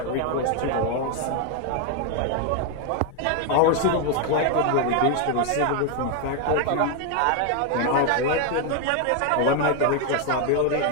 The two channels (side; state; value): both; different; correlation 0.01